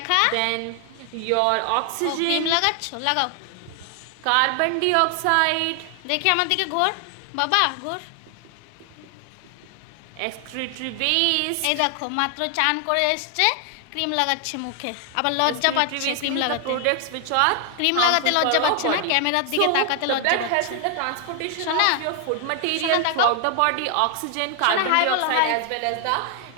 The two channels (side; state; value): both; different; correlation 0.00